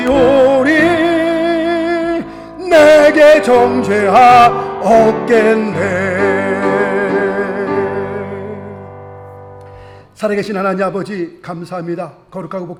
내게 정죄함 없겠네. 살아계신 하나님 아버지, 감사합니다. 거룩하고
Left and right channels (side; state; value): both; identical; correlation 1.00